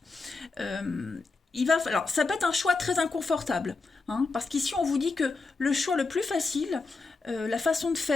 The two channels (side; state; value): right; quieter; 3.9 dB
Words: Alors, ça peut être un choix très inconfortable, hein, parce qu'ici, on vous dit que le choix le plus facile, la façon de